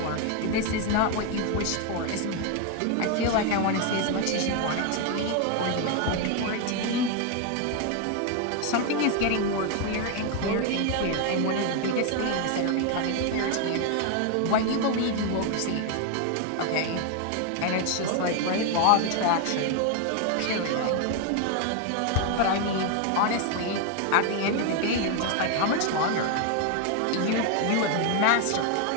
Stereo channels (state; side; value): different; both; correlation 0.01